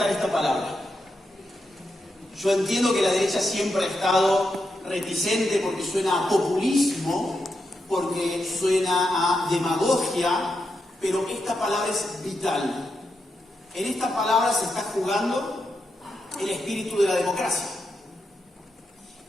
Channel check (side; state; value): both; normal; correlation 0.85